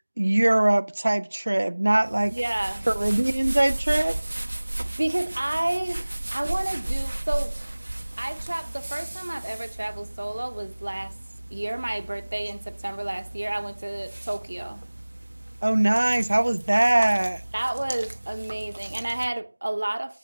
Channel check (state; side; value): inverted; both; correlation -1.00